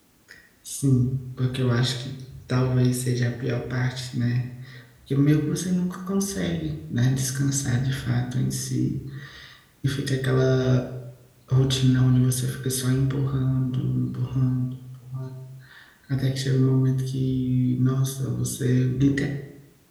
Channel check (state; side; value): identical; both; correlation 1.00